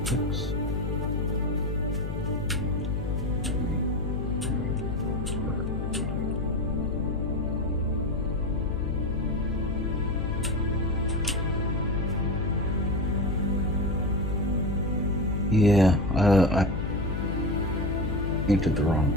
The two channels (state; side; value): noise; left; hum, 2 dB below the sound